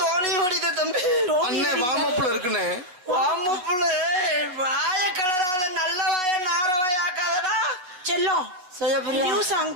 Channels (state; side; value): late; left; 8.1 ms